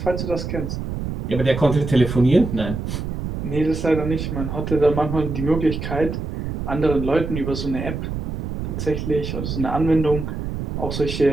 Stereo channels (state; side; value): noise; right; rumble, 4 dB below the sound